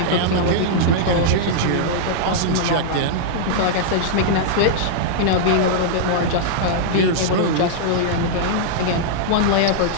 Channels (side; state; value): both; different; correlation -0.02